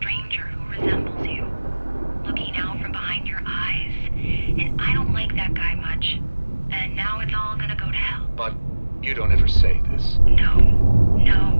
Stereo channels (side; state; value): both; inverted; correlation -1.00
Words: who resembles you. Looking out from behind your eyes, and I don't like that guy much. And now it's all gonna go to hell. But you don't ever say this. No.